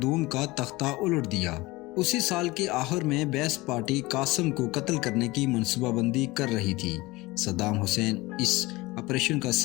دوم کا تختہ الٹ دیا۔ اسی سال کے آخر میں بیس پارٹی قاسم کو قتل کرنے کی منصوبہ بندی کر رہی تھی۔ صدام حسین اس آپریشن کا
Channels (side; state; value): right; quieter; 21.2 dB